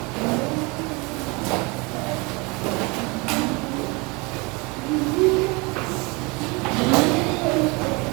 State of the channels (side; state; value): left; quieter; 27.5 dB